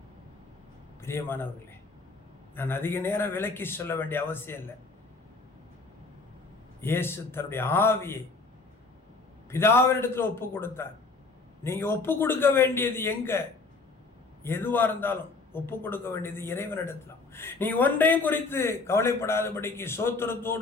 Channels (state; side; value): quieter; right; 3.8 dB